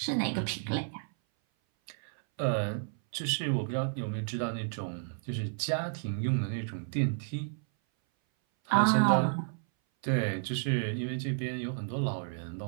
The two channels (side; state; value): left; silent; 57 dB below the other